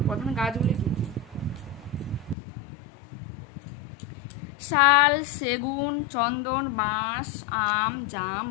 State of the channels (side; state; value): right; drops out; at 2.4 s